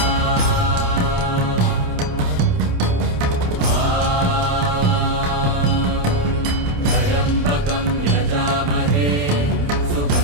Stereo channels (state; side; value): late; left; 28 ms